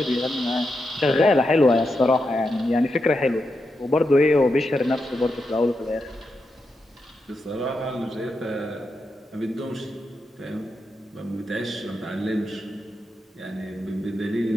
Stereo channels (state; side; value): normal; both; correlation 0.86